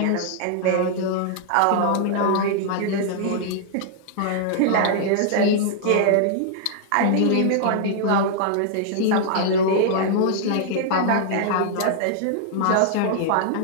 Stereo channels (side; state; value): both; different; correlation -0.01